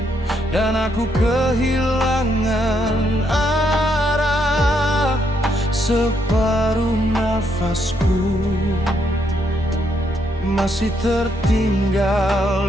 dan aku kehilangan arah. Separuh nafasku masih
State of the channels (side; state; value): both; normal; correlation 0.75